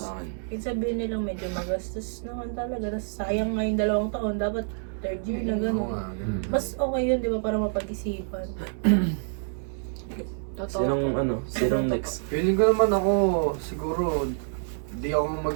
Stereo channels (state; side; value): silent; left; digital silence